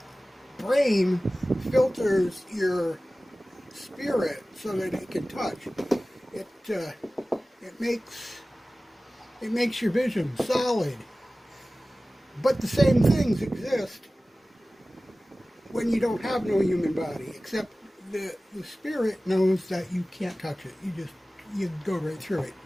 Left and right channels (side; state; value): both; normal; correlation 0.97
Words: brain filters your spirit so that it can touch. It it makes your vision solid. But the same things exist when you don't have no human body, except the spirit knows that you can't touch it. You go right through it.